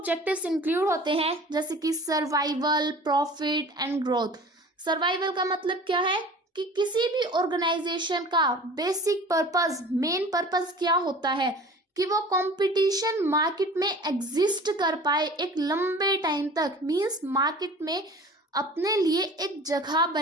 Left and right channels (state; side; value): normal; both; correlation 0.42